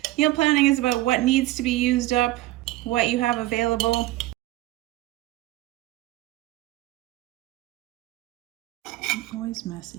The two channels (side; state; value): left; quieter; 17.1 dB